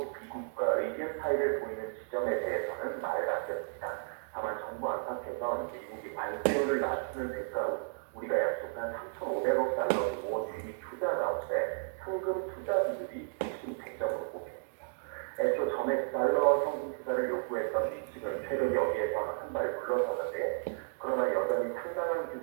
미국과 의견 차이를 보이는 지점에 대해서는 말을 아꼈습니다. 다만 정부 안팎에선 미국이 관세율을 낮추는 대가로 우리가 약속한 3,500억 달러 규모 대미 투자 가운데 현금 투자 비율이 핵심 쟁점으로 꼽힙니다. 애초 전액 달러 현금 투자를 요구했던 미 측은 최근 여기에서 한 발 물러서는데 그러나 여전히 상당한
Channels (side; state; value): left; silent; digital silence